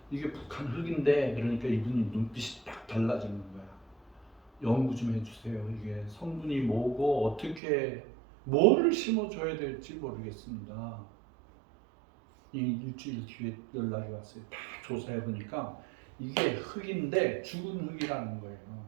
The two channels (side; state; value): left; drops out; at 7.6 s